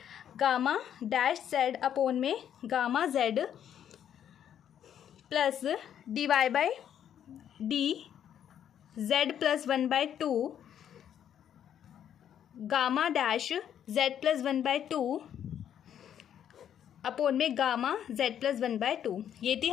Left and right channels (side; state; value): right; quieter; 9.6 dB